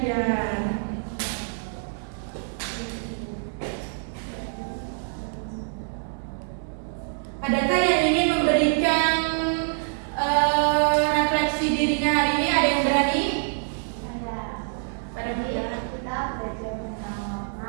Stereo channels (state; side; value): silent; left; 61 dB below the other